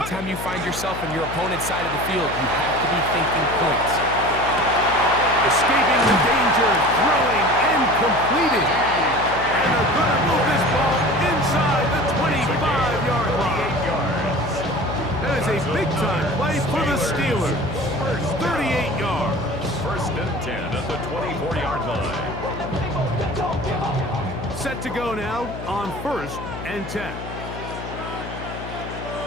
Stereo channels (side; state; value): left; noise; hum, 9 dB below the sound